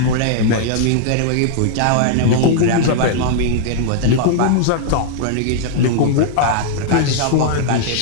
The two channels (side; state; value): both; different; correlation -0.01